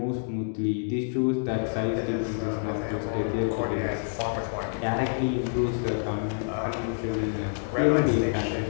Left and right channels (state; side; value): silent; right; digital silence